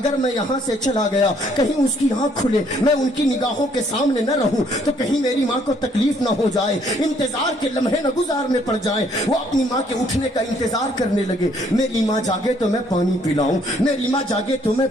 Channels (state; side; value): normal; both; correlation 0.65